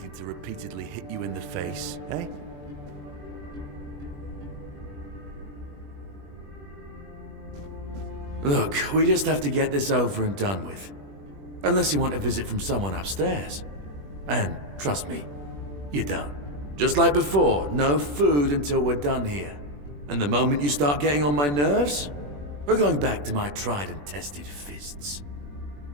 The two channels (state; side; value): late; left; 21 ms